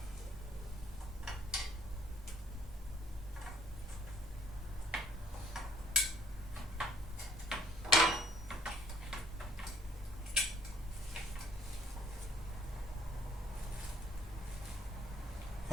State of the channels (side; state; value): both; normal; correlation 0.62